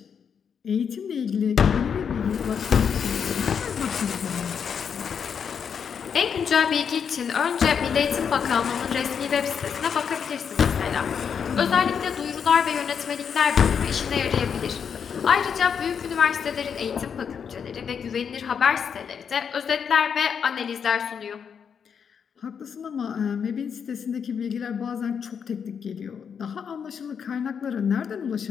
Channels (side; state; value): right; quieter; 7.0 dB